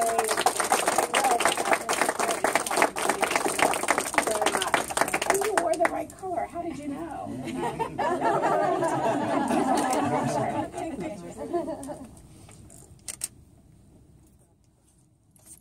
you wore the right color. How did you know?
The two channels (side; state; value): both; identical; correlation 1.00